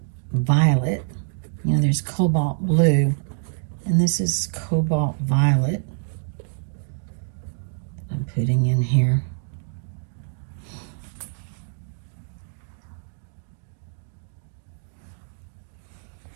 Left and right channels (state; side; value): silent; left; digital silence